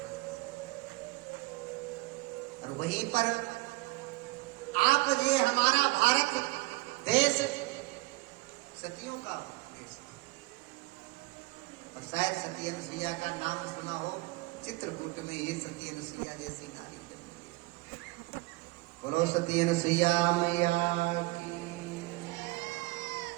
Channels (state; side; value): quieter; left; 22.6 dB